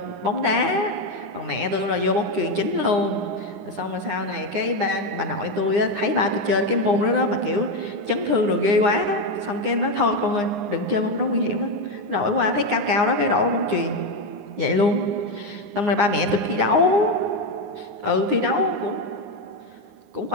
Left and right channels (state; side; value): late; left; 9.8 ms